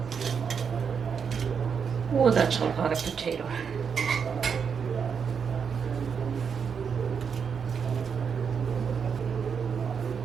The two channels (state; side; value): quieter; left; 6.6 dB